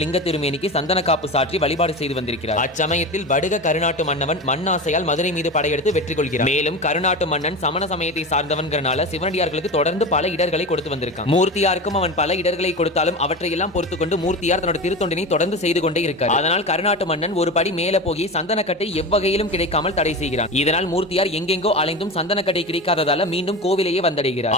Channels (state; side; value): normal; both; correlation 0.26